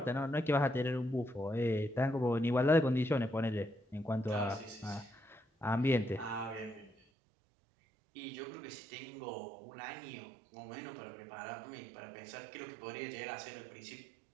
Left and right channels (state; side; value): drops out; left; at 7.0 s